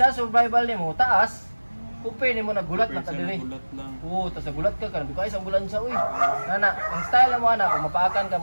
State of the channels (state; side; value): inverted; both; correlation -1.00